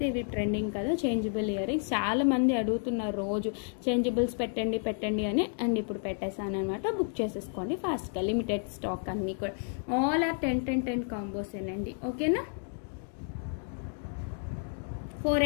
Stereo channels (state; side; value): silent; right; 57 dB below the other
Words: ఇవి ట్రెండింగ్ కదా చేంజబుల్ ఇయర్ రింగ్స్. చాలా మంది అడుగుతున్నారు రోజు చేంజబుల్స్ పెట్టండి అని. అండ్ ఇప్పుడు పెట్టేసాను అనమాట. బుక్ చేసేసుకోండి ఫాస్ట్గా. లిమిటెడ్ స్టాక్ అన్నీ కూడా. ఆల్ ఆర్ 10 కాంబోస్ ఏనండి. ఓకేనా,